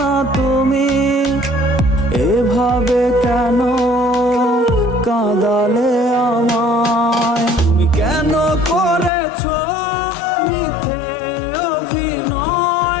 তুমি এভাবে কেন কাঁদালে আমায়? তুমি কেন করেছো মিথ্যে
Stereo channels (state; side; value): drops out; right; at 9.1 s